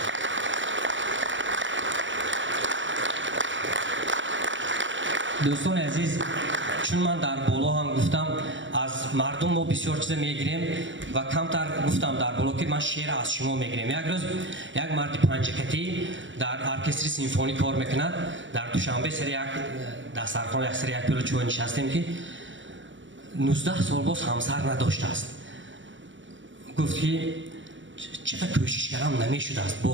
دوستان عزیز، چون من در بالا هم گفتم از مردم ما بسیار چیز میگیریم و کمتر گفتم در بالا که من شعر از شما میگیریم. یک روز یک مرد پنجکتی در ارکستر سیمفونی کار میکند. در دوشنبه سر یک دسترخوان یک سر یک پیلو چوب نشستیم که 19 سال باز همسر نداشته است. گفت که چقدر کوشش کردم نمیشده است،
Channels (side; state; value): left; late; 0.55 ms